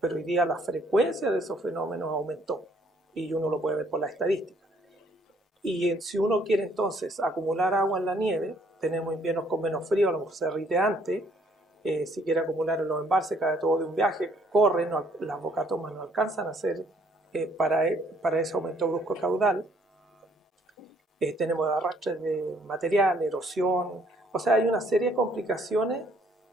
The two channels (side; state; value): both; normal; correlation 0.64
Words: hoy día la frecuencia de esos fenómenos aumentó y uno lo puede ver por la estadística. Y si uno quiere entonces acumular agua en la nieve, tenemos inviernos con menos frío, a lo mejor se derrite antes, si quiere acumular en los embalses, cae todo de un viaje, corre, las bocatomas no alcanzan a hacer para ese aumento brusco caudal. Tenemos arrastres de material, erosión, o sea, hay una serie de complicaciones